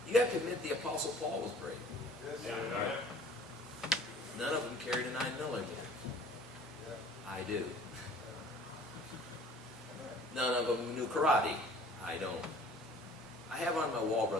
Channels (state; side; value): normal; both; correlation 0.50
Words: You have to admit the Apostle Paul was brave. Yes, Yeah, sir. right. None of them carried a 9mm. Yeah. I do. None of them knew karate. I don't. I have on my wall,